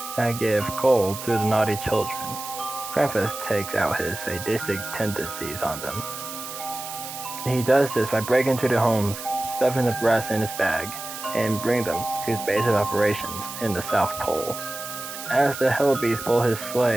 that gave cold to the naughty children, Krampus takes out his sadistic tendencies on them. He does this by breaking into the homes, stuffing the breasts in his bag, and bring them to his base of operations in the South Pole. As the Hellbeasts pull his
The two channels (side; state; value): right; noise; hiss, 10 dB below the sound